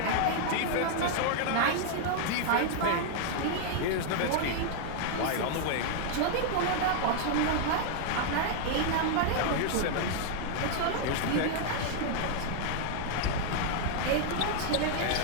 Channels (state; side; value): different; both; correlation 0.00